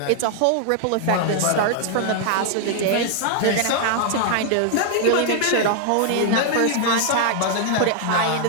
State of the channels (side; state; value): both; different; correlation 0.00